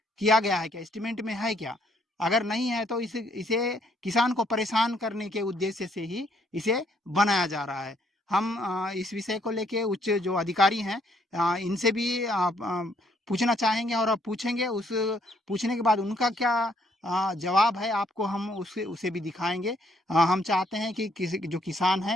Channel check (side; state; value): both; normal; correlation 0.69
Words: किया गया है क्या? एस्टीमेट में है क्या? अगर नहीं है तो इसे किसान को परेशान करने के उद्देश्य से ही इसे बनाया जा रहा है। हम इस विषय को लेके उच्च जो अधिकारी हैं इनसे भी पूछना चाहेंगे और पूछेंगे। उस पूछने के बाद उनका क्या जवाब है आपको हम उसे भी दिखाएँगे। हम चाहते हैं कि किसी जो किसान